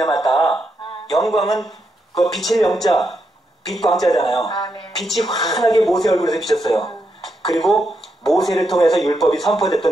영광은 그 빛의 영자, 빛광자잖아요. 네. 빛이 환하게 모세 얼굴에서 비쳤어요. 그리고 모세를 통해서 율법이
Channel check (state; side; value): normal; both; correlation 0.82